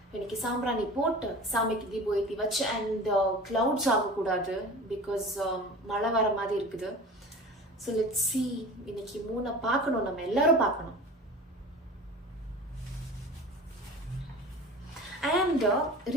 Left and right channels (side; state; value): both; normal; correlation 0.37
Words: இன்னைக்கு சாம்பிராணி போட்டு சாமிக்கு தீபம் ஏற்றி வச்சு, அண்ட் க்ளவுட்ஸ் ஆகக்கூடாது பிகாஸ் மழை வர மாதிரி இருக்குது. So let's see. இன்னைக்கு மூணை பார்க்கணும், நம்ம எல்லாரும் பார்க்கணும். அண்ட்